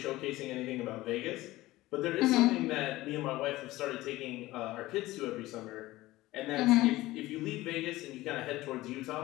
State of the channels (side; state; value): right; quieter; 17.8 dB